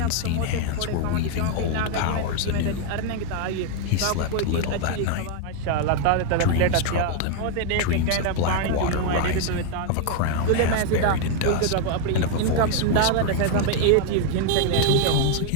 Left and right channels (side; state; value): both; different; correlation 0.01